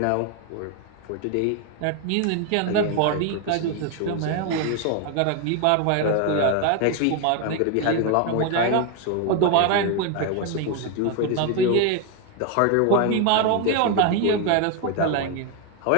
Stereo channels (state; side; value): different; both; correlation 0.01